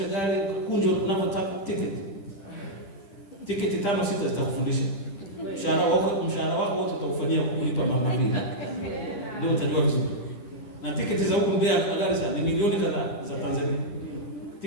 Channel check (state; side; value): late; right; 10 ms